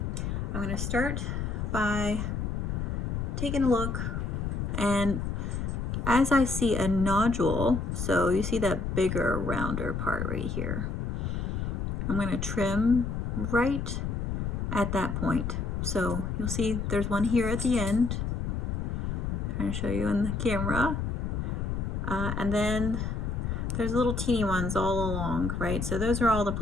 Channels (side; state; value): left; noise; rumble, 2 dB below the sound